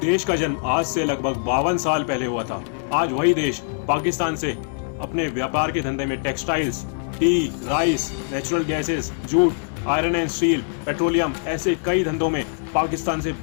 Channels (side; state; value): right; silent; digital silence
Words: का जन्म आज से लगभग 52 साल पहले हुआ था, आज वही देश पाकिस्तान से अपने व्यापार के धंधे में textiles, T, rice, natural gases, jute, iron and steel, petroleum, ऐसे कई धंधों में पाकिस्तान से